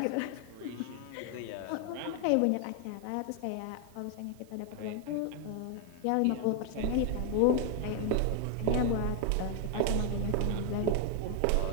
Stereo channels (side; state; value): both; different; correlation 0.00